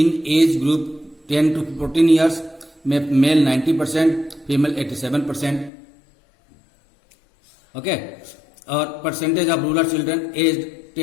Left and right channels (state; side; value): drops out; right; at 5.7 s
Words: age group 10 to 14 years में मेल 90%, फीमेल 87%। ओके, और percentage of rural children age